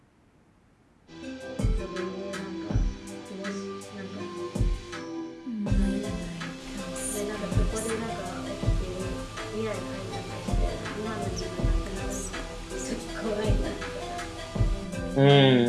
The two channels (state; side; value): identical; both; correlation 1.00